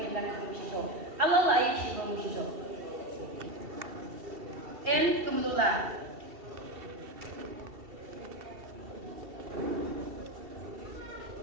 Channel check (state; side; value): late; left; 2.7 ms